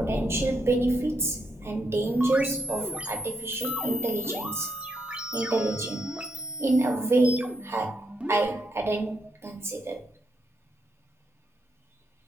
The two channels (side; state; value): both; normal; correlation 0.79